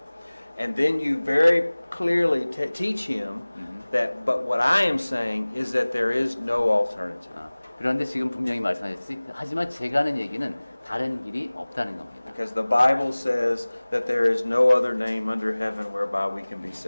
And then you very clearly teach him that, but what I am saying is that there is no alternative. 그런데 지금 분명히 말씀하셨지. 하지만 제가 하는 얘기는 다른 길이 없다는 겁니다. Because the Bible says that there is no other name under heaven whereby we can be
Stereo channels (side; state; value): both; inverted; correlation -1.00